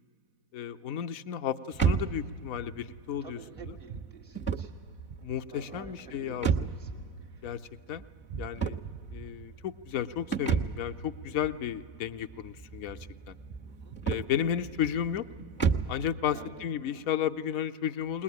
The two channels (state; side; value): late; right; 4.1 ms